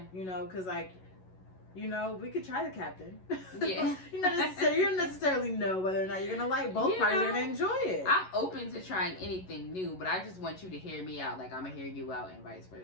You know, because like, you know, we could try the captain. Yeah. You don't necessarily know whether or not you're gonna like both parties are gonna enjoy it. I'm open to trying anything new, but I just want you to hear me out, like I'm gonna hear you out, and vice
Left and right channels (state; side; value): late; right; 11 ms